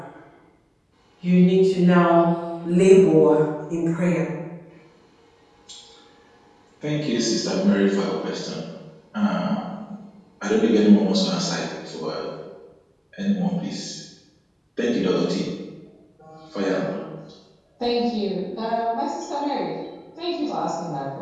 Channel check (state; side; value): identical; both; correlation 1.00